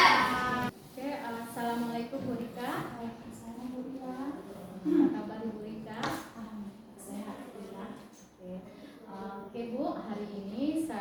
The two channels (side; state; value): both; identical; correlation 1.00